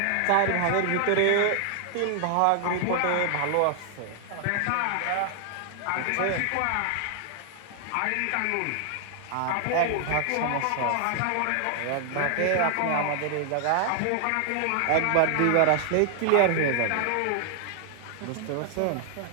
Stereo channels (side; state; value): both; different; correlation 0.00